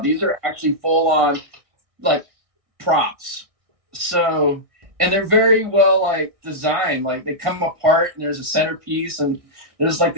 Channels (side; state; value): left; late; 1.5 ms